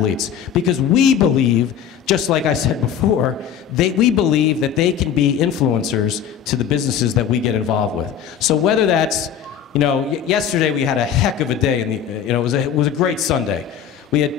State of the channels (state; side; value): quieter; right; 8.6 dB